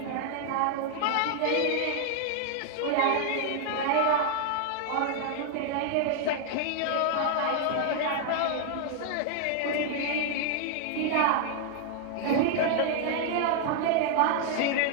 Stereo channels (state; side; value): different; both; correlation 0.00